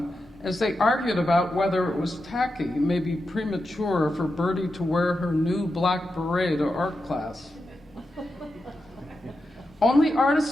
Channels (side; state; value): both; normal; correlation 0.89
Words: as they argued about whether it was tacky, maybe premature, for Bertie to wear her new black beret to art class. Only